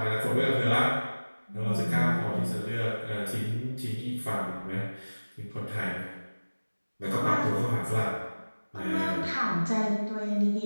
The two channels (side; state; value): both; inverted; correlation -1.00